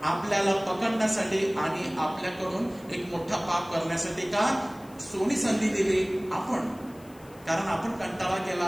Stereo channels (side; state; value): left; noise; hiss, 25 dB below the sound